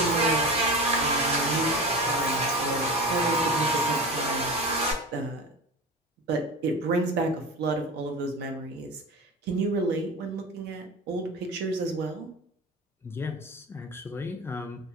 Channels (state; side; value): normal; both; correlation 0.29